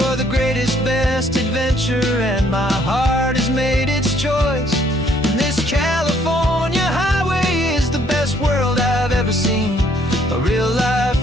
the greatest, best adventure, and my heart has made its choice. And this California highway is the best world I've ever seen, a real-life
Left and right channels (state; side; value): normal; both; correlation 0.65